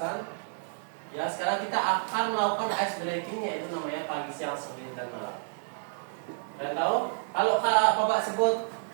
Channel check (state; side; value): silent; left; digital silence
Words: Ya, sekarang kita akan melakukan ice breaking, yaitu namanya pagi, siang, sore, dan malam. Kalian tahu? Kalau Bapak sebut